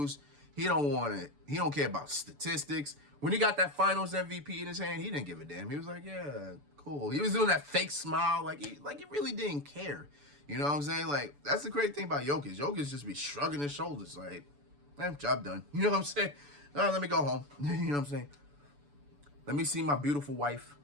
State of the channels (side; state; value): left; late; 6.9 ms